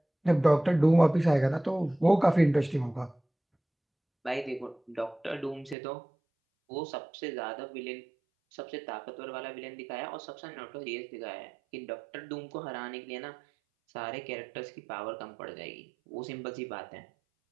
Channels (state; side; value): drops out; left; at 5.8 s